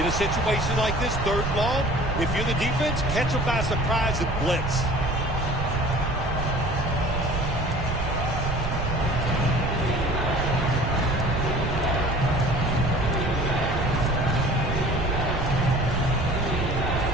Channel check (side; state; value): right; noise; rumble, 4 dB below the sound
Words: a situation like this, 3rd and long, if you're the defense, catch them by surprise and blitz.